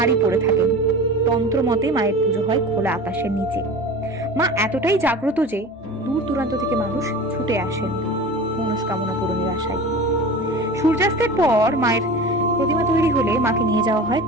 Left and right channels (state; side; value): normal; both; correlation 0.35